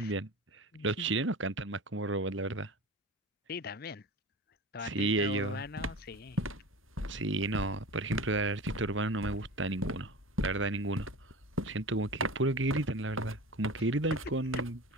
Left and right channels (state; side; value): normal; both; correlation 0.33